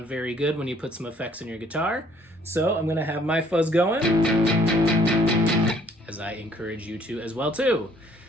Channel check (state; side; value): normal; both; correlation 0.61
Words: very good when you put some effects in your guitar. So I'm going to have my fuzz going, as I encourage you to as well too.